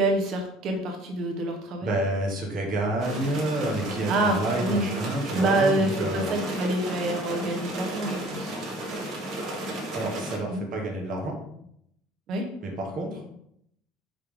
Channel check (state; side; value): normal; both; correlation 0.51